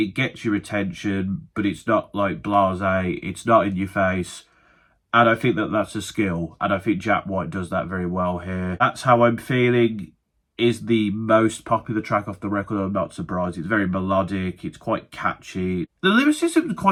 gets your attention, but it's not blasé, it's not in your face. And I think that's a skill, and I think Jack White does that very well here. That's How I'm Feeling is the most popular track off the record. I'm not surprised. It's very melodic, it's quite catchy. The lyricism is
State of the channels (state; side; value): identical; both; correlation 1.00